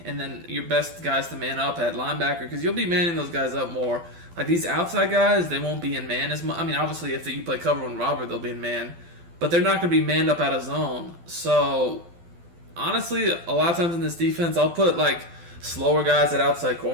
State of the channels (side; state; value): left; late; 12 ms